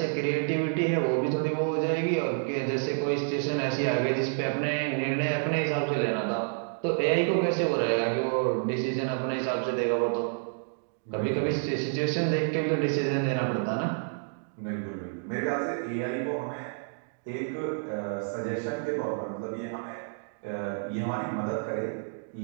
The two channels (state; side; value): silent; left; digital silence